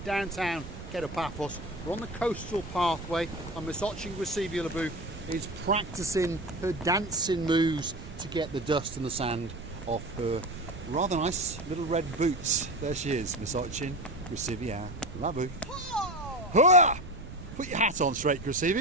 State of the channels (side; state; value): right; noise; rumble, 12 dB below the sound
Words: Downtown Paphos. We're on the coastal pathway and Miss Gracevia is practicing her dancing moves to get the dust and the sand off her rather nice little red boots. There she is, Miss Gracevia. Oh! Put your hat on straight,